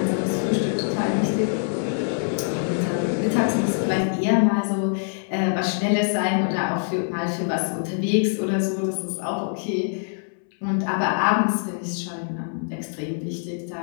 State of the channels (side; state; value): right; silent; 62 dB below the other